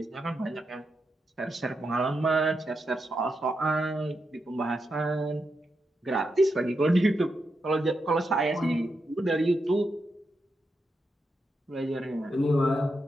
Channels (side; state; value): both; normal; correlation 0.85